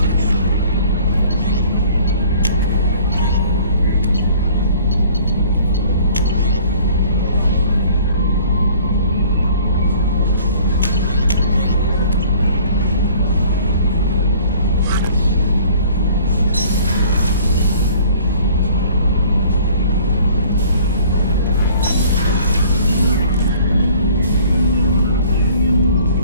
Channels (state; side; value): inverted; both; correlation -0.52